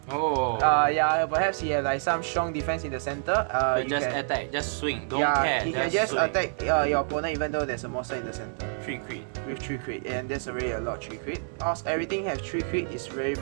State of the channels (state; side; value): silent; left; 60 dB below the other